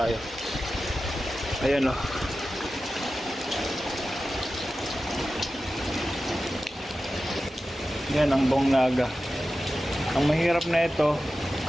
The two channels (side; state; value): both; normal; correlation 0.93